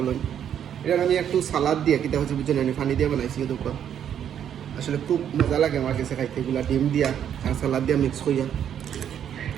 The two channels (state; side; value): quieter; left; 9.3 dB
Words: এটা আমি একটু সালাদ দিয়ে কিতা হচ্ছে বুঝছেন আমি পানি দিয়ে বানাইছি। দুটো আসলে খুব মজা লাগে আমার কাছে খাইতে, এগুলা ডিম দিয়া আর সালাদ দিয়া মিক্স করিয়া